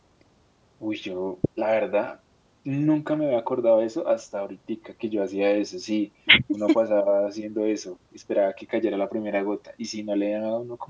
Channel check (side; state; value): both; identical; correlation 1.00